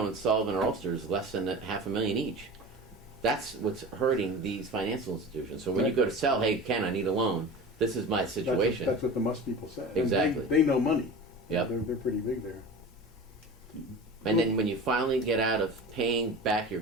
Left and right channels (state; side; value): normal; both; correlation 0.34